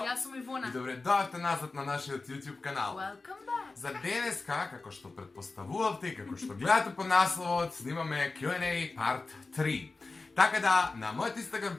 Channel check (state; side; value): quieter; right; 3.7 dB